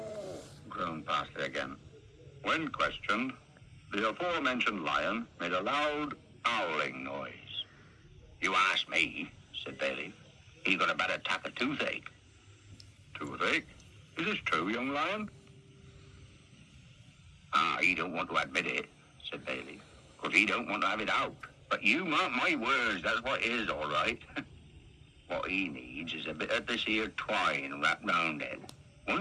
Groaned Parsley again. When questioned, the aforementioned lion made a loud howling noise. You asked me, said Bayleaf. He got a bad attack of toothache. Toothache? Is this true, young lion? He don't want to admit it, said Bayleaf, because he don't want to have it out. But you mark my words, that's what it is, all right. What he needs is a bit of this here twine wrapped round it.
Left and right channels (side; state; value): both; identical; correlation 1.00